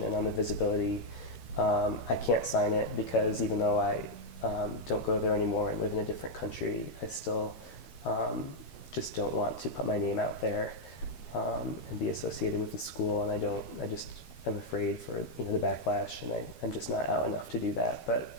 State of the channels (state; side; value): late; right; 13 ms